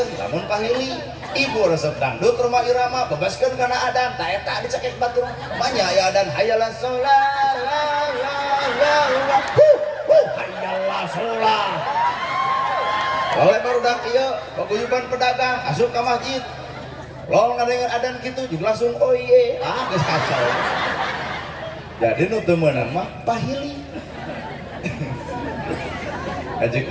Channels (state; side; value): identical; both; correlation 1.00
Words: lamun pahili ibu resep dangdut rumah irama bebaskeun kana adan ta eta dicekek batur manya aya adan hayalah sholat la la la la hayalah sholat. Oleh barudak ieu paguyuban pedagang asup ka masjid lalu ngadengar adan kitu juga langsung oh iye geus kacau. Jadi nu teu meunang mah pahili. Haji